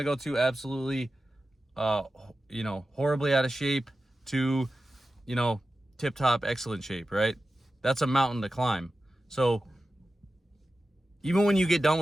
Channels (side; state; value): both; normal; correlation 0.93